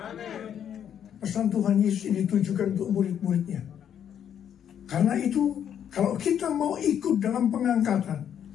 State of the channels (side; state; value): right; quieter; 9.1 dB